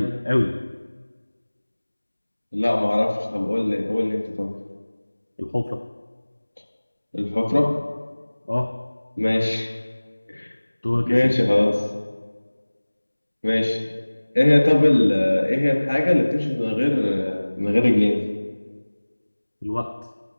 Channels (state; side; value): inverted; both; correlation -1.00